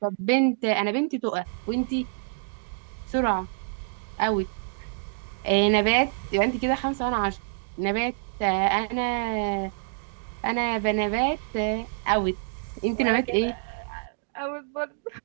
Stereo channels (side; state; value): left; silent; digital silence